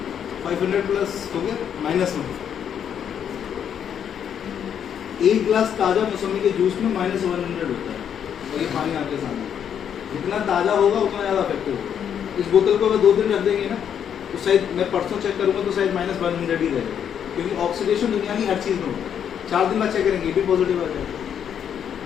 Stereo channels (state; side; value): quieter; right; 8.6 dB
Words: 500 प्लस हो गया माइनस में। एक गिलास ताजा मौसमी के जूस में -100 होता है, और ये पानी आपके सामने। जितना ताजा होगा उतना ज्यादा इफेक्टिव होगा। इस बोतल को अगर 2 दिन रख देंगे ना तो शायद, मैं परसों चेक करूंगा तो शायद -100 ही रहेगा, क्योंकि ऑक्सीडेशन दुनिया की हर चीज में होता है। 4 दिन बाद चेक करेंगे ये भी पॉजिटिव आ जाएगा।